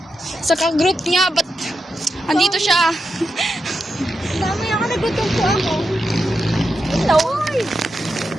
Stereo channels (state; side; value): normal; both; correlation 0.87